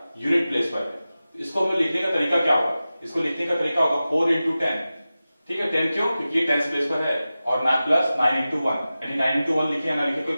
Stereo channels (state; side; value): inverted; both; correlation -0.95